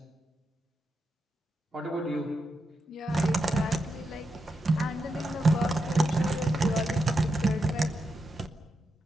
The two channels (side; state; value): both; normal; correlation 0.86